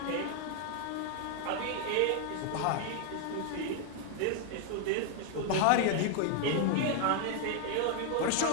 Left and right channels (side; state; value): both; different; correlation 0.00